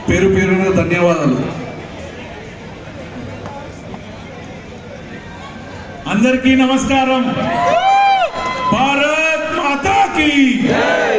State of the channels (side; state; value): both; identical; correlation 1.00